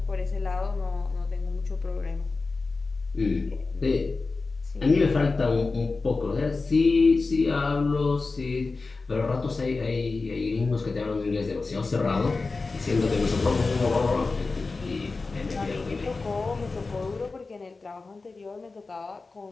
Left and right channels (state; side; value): quieter; right; 3.9 dB